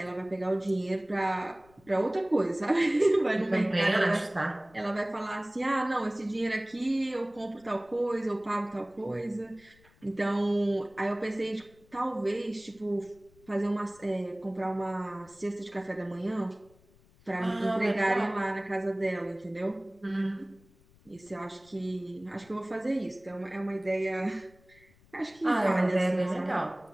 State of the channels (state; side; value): noise; left; rumble, 29 dB below the sound